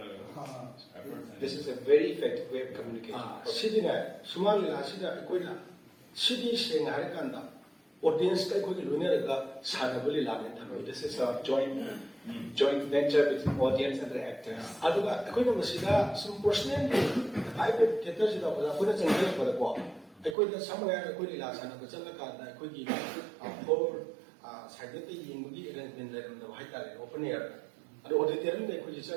efforts. This is a very effective way of communicating. Sidina Sumang-Lila sida koi la sidi seng hari kanda audience kai koi lune ga sanabuli la ne thamai. This is a joint venture between audience and the actors. Aduga koi na masida some personal ai pe theater sida ba koi na change ba ko ai koi da samaya koi la sana ko chala ka da koi gi for side te ying gi arrangement la ram da hai ta le open air adu auditorium de koi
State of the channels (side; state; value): left; drops out; at 20.4 s